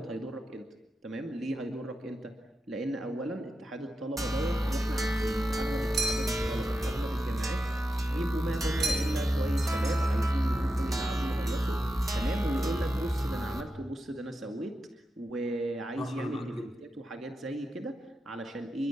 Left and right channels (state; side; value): normal; both; correlation 0.89